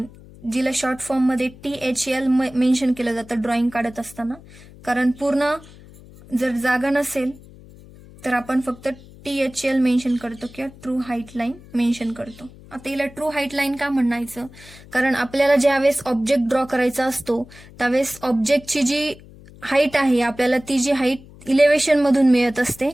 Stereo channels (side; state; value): left; noise; hum, 21 dB below the sound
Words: जिला शॉर्ट फॉर्म मध्ये THL मेन्शन केलं जातं ड्रॉइंग काढत असताना. कारण पूर्ण जर जागा नसेल तर आपण फक्त THL मेन्शन करतो किंवा ट्रू हाईट लाईन मेन्शन करतो. आता हिला ट्रू हाईट लाईन का म्हणायचं, कारण आपल्याला ज्यावेळेस ऑब्जेक्ट ड्रॉ करायचा असतो त्यावेळेस ऑब्जेक्टची जी हाईट आहे आपल्याला ती जी हाईट इलेव्हेशन मधून मिळत असते.